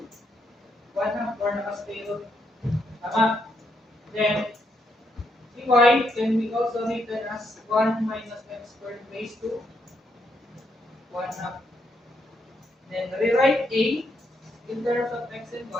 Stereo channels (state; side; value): normal; both; correlation 0.77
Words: half or naka-zero. Tama. Then dy can be also written as 1 minus x squared raised to 1 half. Then rewrite a in terms of x and